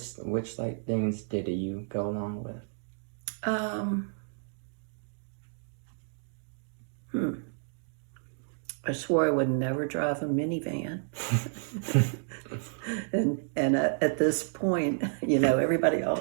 like things did you go along with? I swore I would never drive a minivan. and at this point, everybody all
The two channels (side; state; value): left; silent; digital silence